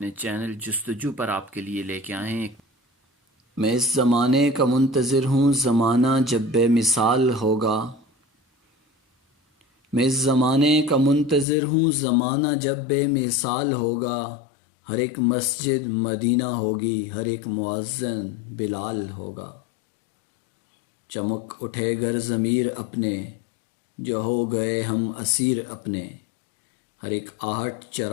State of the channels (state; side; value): drops out; right; at 11.5 s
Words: چینل جستجو پر آپ کے لیے لے کے آئے ہیں۔ میں اس زمانے کا منتظر ہوں، زمانہ جب بے مثال ہوگا۔ میں اس زمانے کا منتظر ہوں، زمانہ جب بے مثال ہوگا۔ ہر ایک مسجد مدینہ ہوگی، ہر ایک مؤذن بلال ہوگا۔ چمک اٹھے گر ضمیر اپنے، جو ہو گئے ہم اسیر اپنے۔ ہر ایک آہٹ